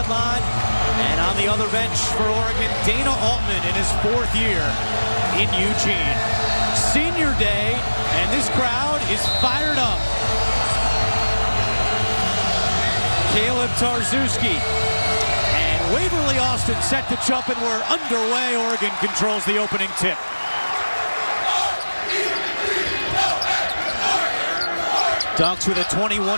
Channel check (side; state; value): both; inverted; correlation -1.00